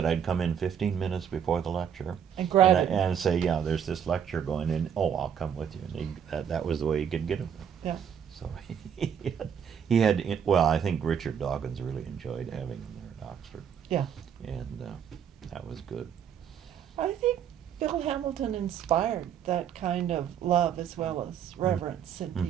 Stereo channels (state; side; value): quieter; left; 8.2 dB